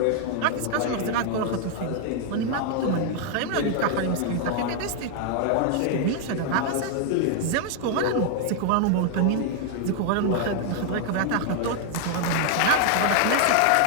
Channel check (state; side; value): different; both; correlation 0.00